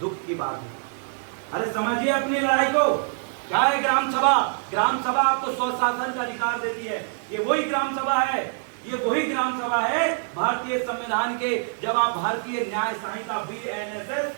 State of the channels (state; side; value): silent; left; 62 dB below the other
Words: की बात है। अरे समझिए अपनी लड़ाई को। क्या है ग्राम सभा? ग्राम सभा आपको स्वशासन का अधिकार देती है। ये वही ग्राम सभा है, ये वही ग्राम सभा है भारतीय संविधान के, जब आप भारतीय न्याय संहिता